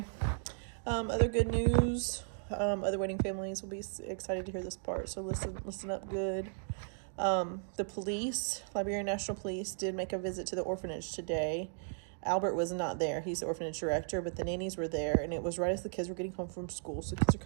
Other good news, other waiting families will be excited to hear this part, so listen up good. The police, Liberian National Police, did make a visit to the orphanage today. Albert was not there. He's the orphanage director, but the nannies were there, and it was right as the kids were getting home from school. So kids are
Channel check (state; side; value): silent; left; digital silence